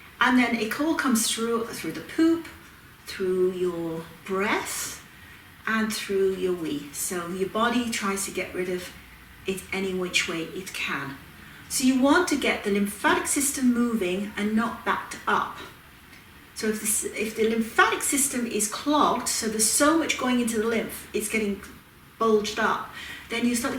And then it all comes through the poop, through your breath, and through your wee. So your body tries to get rid of it any which way it can. So you want to get the lymphatic system moving and not backed up. So if the lymphatic system is clogged, so there's so much going into the lymph, it's getting bulged up, then you start to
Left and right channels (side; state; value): both; identical; correlation 1.00